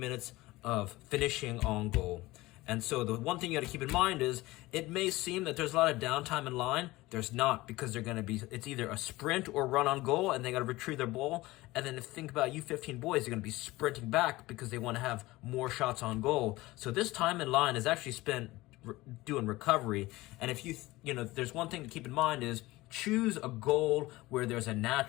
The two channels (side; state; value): right; quieter; 19.4 dB